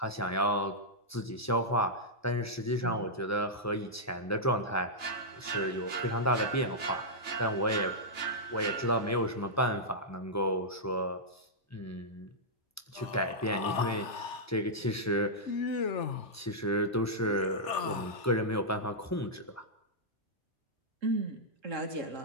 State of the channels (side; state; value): both; normal; correlation -0.10